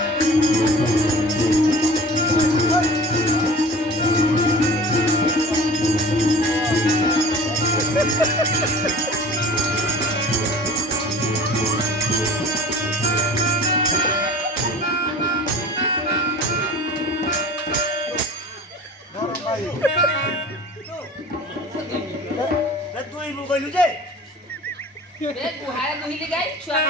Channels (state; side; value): normal; both; correlation 0.42